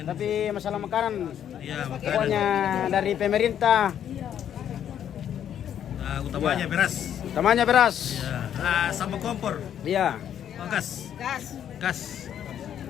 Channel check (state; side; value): quieter; right; 9.7 dB